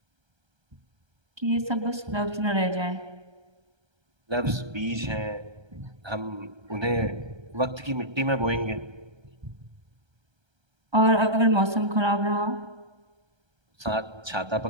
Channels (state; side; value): late; left; 1.3 ms